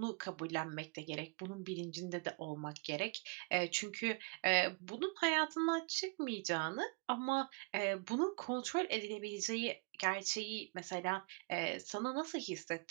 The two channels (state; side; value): quieter; left; 31.0 dB